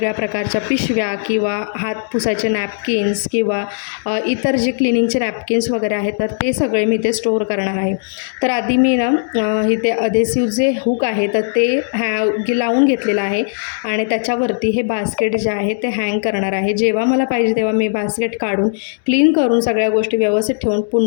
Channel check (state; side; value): silent; right; digital silence